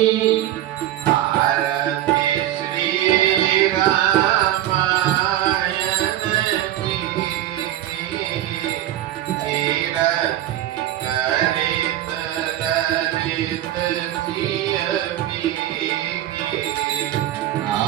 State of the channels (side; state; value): left; quieter; 13.0 dB